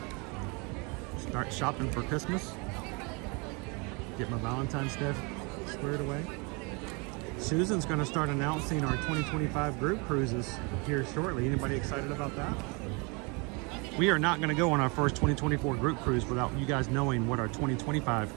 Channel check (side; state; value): left; quieter; 30.5 dB